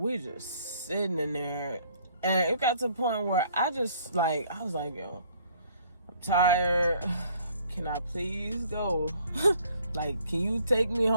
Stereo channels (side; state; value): both; inverted; correlation -0.60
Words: we just sitting in there, and it got to the point where I was like, yo, I'm tired. Can I please go? Like, can you take me